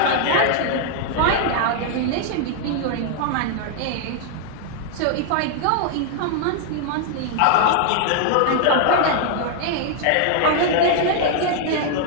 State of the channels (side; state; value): both; different; correlation 0.00